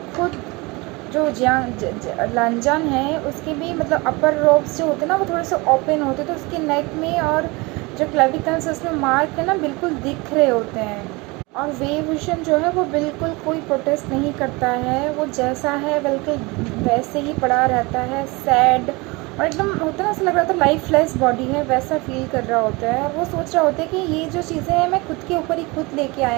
खुद जो लंजान है उसके भी मतलब अपर रोब्स जो होते हैं ना, वो थोड़े से ओपन होते हैं, तो उसके नेक में और जो क्लेविकल्स उसमें मार्क है ना, बिल्कुल दिख रहे होते हैं। और वे विजन जो है वो बिल्कुल कोई प्रोटेस्ट नहीं करता है, वो जैसा है बिल्कुल वैसे ही पड़ा रहता है, सैड। और एकदम होता है ना, ऐसा लग रहा था लाइफलेस बॉडी है, वैसा फील कर रहा होता है। और वो सोच रहा होता है कि ये जो चीज़ें हैं मैं खुद के ऊपर ही खुद लेके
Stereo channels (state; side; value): quieter; left; 25.2 dB